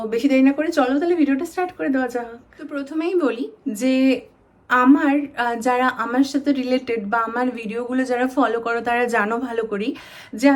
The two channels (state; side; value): identical; both; correlation 1.00